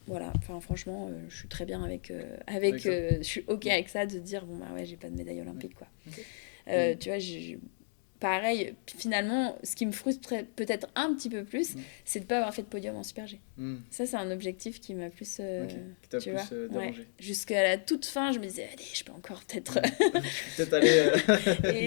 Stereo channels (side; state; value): right; silent; digital silence